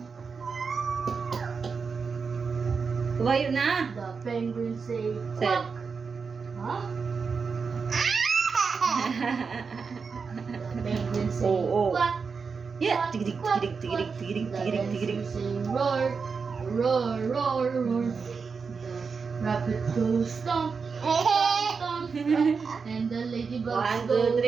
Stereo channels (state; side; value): quieter; left; 5.3 dB